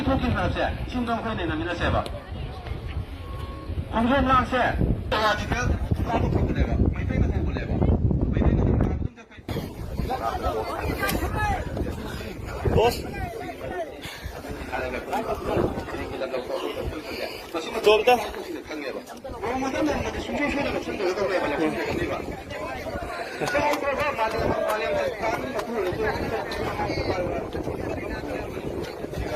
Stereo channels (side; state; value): both; identical; correlation 1.00